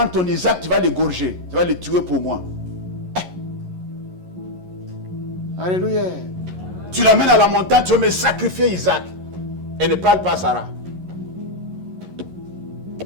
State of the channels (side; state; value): left; late; 11 ms